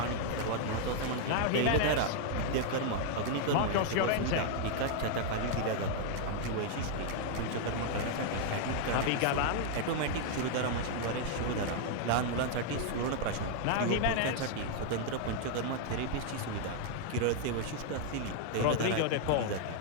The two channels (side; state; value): both; different; correlation 0.00